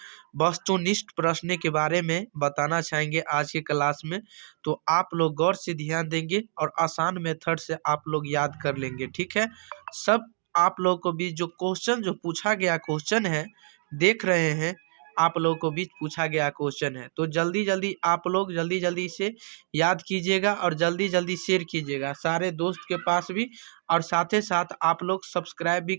वस्तुनिष्ठ प्रश्न के बारे में बताना चाहेंगे आज के क्लास में। तो आप लोग गौर से ध्यान देंगे और आसान मेथड से आप लोग याद कर लेंगे, ठीक है। सब आप लोग को भी जो क्वेश्चन जो पूछा गया क्वेश्चन है देख रहे हैं, आप लोगों को भी पूछा गया क्वेश्चन है, तो जल्दी जल्दी आप लोग जल्दी से याद कीजिएगा और जल्दी जल्दी शेयर कीजिएगा सारे दोस्त के पास भी। और साथ ही साथ आप लोग सब्सक्राइब भी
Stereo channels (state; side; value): silent; left; digital silence